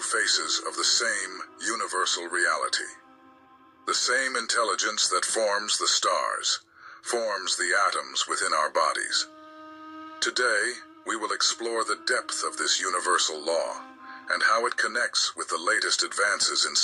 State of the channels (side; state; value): both; identical; correlation 1.00